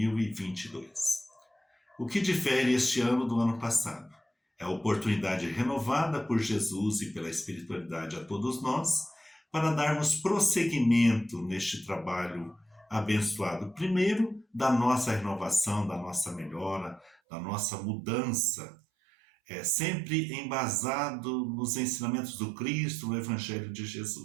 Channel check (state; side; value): drops out; left; at 17.2 s